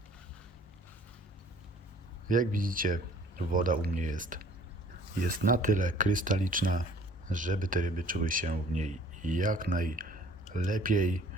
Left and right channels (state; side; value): normal; both; correlation 0.53